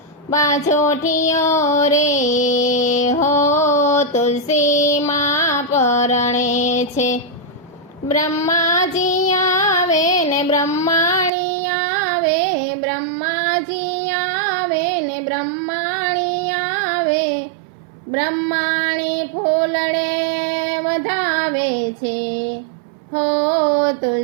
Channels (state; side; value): drops out; left; at 11.3 s